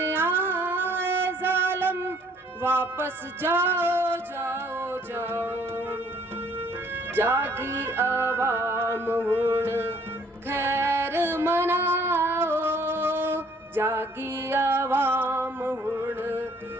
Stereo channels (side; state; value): both; normal; correlation 0.61